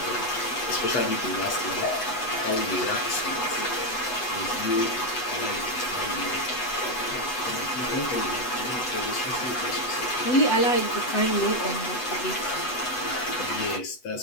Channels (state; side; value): late; right; 8.0 ms